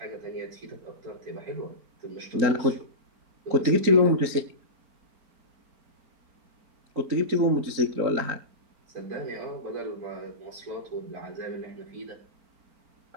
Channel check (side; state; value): left; late; 4.4 ms